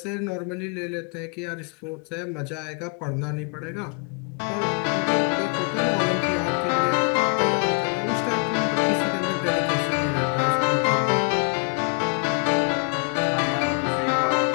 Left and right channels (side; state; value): right; quieter; 37.5 dB